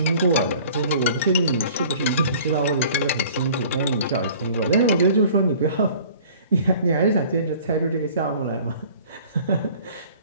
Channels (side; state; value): both; inverted; correlation -0.49